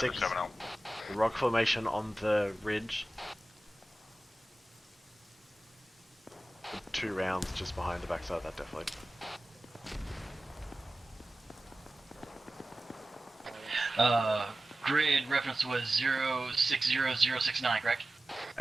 6. 7-0. The rock formation on the ridge. 2 rounds just behind the backside of that definitely. Grid reference was 060069, correct?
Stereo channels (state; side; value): normal; both; correlation 0.95